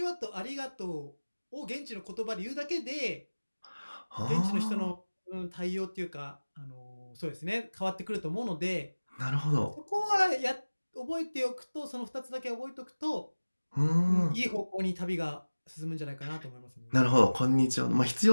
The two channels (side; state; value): both; inverted; correlation -1.00